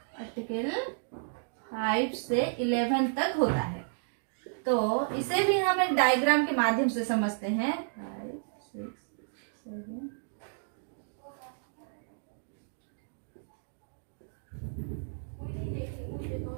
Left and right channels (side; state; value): left; silent; digital silence